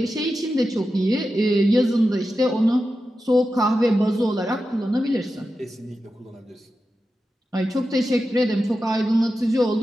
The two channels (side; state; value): both; normal; correlation 0.91